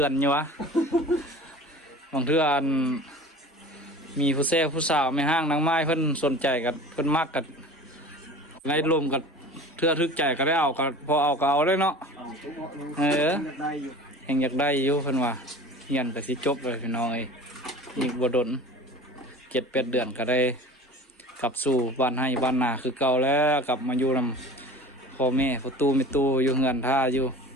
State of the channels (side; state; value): both; normal; correlation 0.39